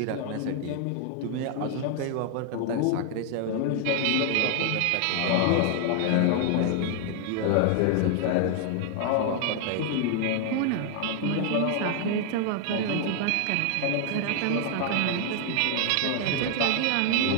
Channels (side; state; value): both; different; correlation 0.00